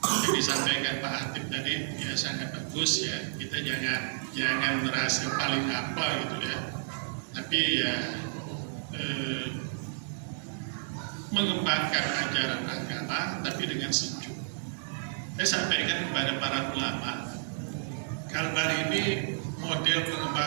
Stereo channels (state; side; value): silent; left; digital silence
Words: yang disampaikan Pak Hatib tadi ya sangat bagus ya. Kita jangan merasa paling apa gitu ya, tapi ya mengembangkan ajaran agama tapi dengan sejuk. Saya sampaikan kepada para ulama, Kalbar ini model